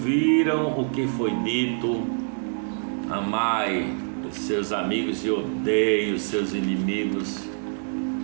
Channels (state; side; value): silent; left; digital silence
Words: o que foi dito, amai os seus amigos e odeie os seus inimigos.